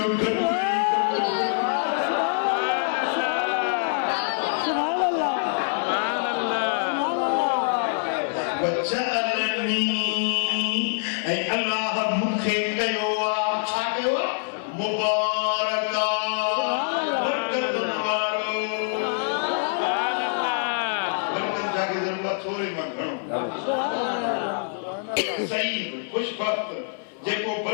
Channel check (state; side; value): silent; right; 62 dB below the other